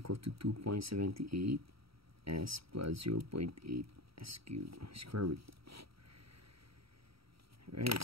to 2.78 s plus 0.8 s cubed square root. Right,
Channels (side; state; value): left; late; 0.76 ms